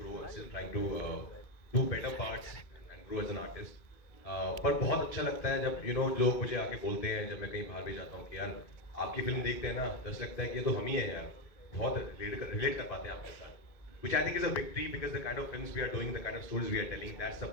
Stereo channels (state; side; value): late; right; 2.4 ms